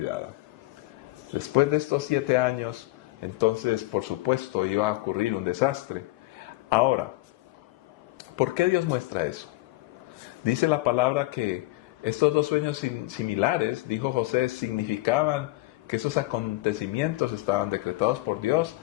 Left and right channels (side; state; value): right; quieter; 19.9 dB